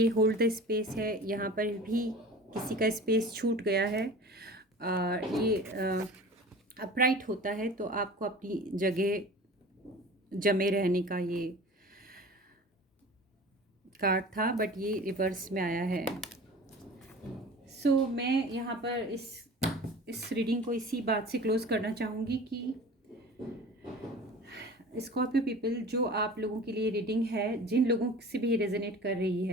होल्ड द स्पेस है। यहाँ पर भी किसी का स्पेस छूट गया है और ये अपराइट होता है तो आपको अपनी जगह जमे रहने का ये कार्ड था, बट ये रिवर्स में आया है। सो मैं यहाँ पर इस रीडिंग को इसी बात से क्लोज करना चाहूँगी कि स्कॉर्पियो पीपल, जो आप लोगों के लिए रीडिंग है, जिन लोगों से भी रेजोनेट कर रही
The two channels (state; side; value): normal; both; correlation 0.39